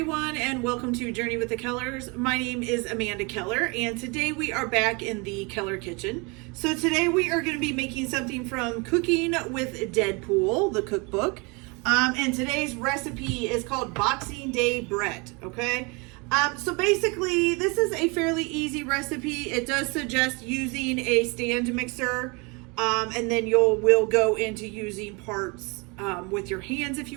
and welcome to Journey with the Kellers. My name is Amanda Keller, and today we are back in the Keller kitchen. So today we are going to be making something from Cooking with Deadpool, the cookbook. And today's recipe is called Boxing Day bread, okay? So basically, this is a fairly easy recipe. It does suggest using a stand mixer, and then we'll go into using parts with your hands if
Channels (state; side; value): quieter; left; 29.3 dB